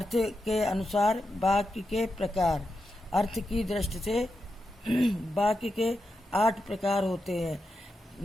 के अनुसार वाक्य के प्रकार। अर्थ की दृष्टि से वाक्य के 8 प्रकार होते हैं।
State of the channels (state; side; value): normal; both; correlation 0.88